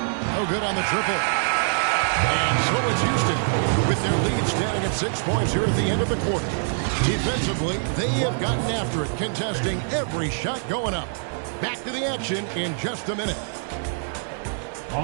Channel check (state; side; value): silent; left; digital silence